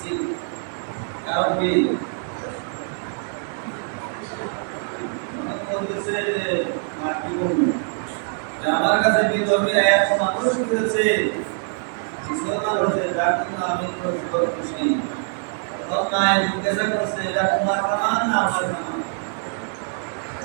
কারণ কি বলতেছে যে মা কি বলবো আমার কাছে বিধর্মীরা এত মানুষ হয়েছে মুসলমান হয়েছে যার জন্য আমি খুশি মায়ের জিজ্ঞাসা করছে এটা তোমার কামান না আমার কামান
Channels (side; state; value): left; silent; 63 dB below the other